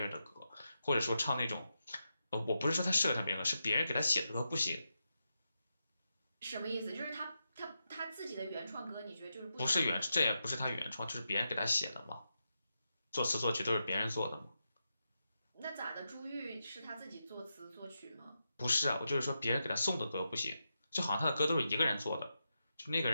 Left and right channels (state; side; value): inverted; both; correlation -0.87